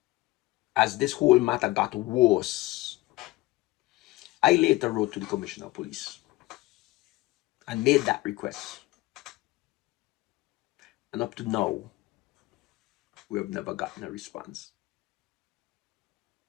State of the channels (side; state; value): right; quieter; 19.6 dB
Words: as this whole matter got worse, I later wrote to the commissioner of police and made that request. And up to now, we have never gotten a response.